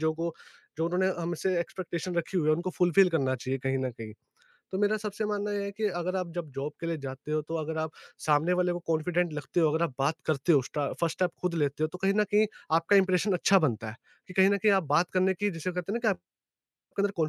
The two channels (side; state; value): both; identical; correlation 1.00